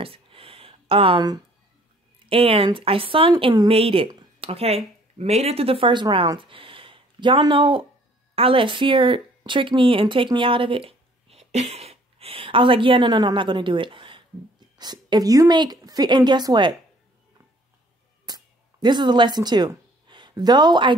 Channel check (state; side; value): normal; both; correlation 0.58